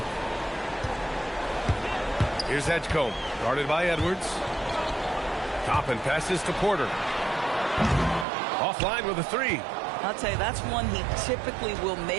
Here's Edgecombe. Guarded by Edwards. Toppin passes to Porter. Offline with a 3. I'll tell you, that's one he typically will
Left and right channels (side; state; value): left; drops out; at 8.2 s